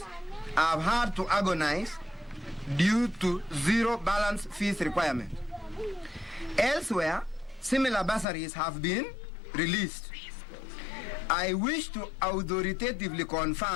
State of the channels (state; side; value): drops out; right; at 8.2 s